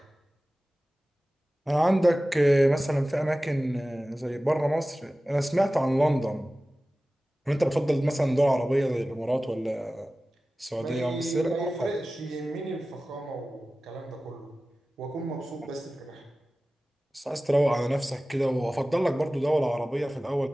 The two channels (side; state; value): both; normal; correlation 0.97